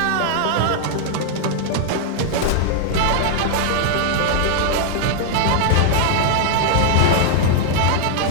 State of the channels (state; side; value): different; both; correlation 0.00